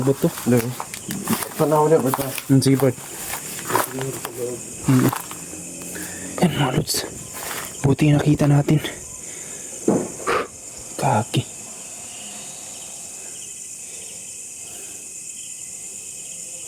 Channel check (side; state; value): both; identical; correlation 1.00